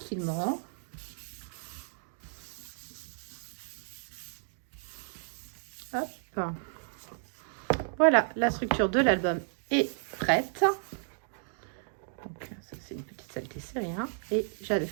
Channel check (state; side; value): silent; left; digital silence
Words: Hop. Voilà, la structure de l'album est prête. Donc ça c'est une petite saleté, c'est rien. Et j'avais